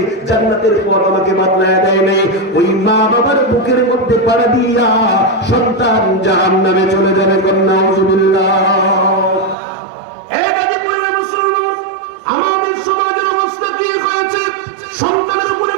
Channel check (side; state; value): left; drops out; at 9.6 s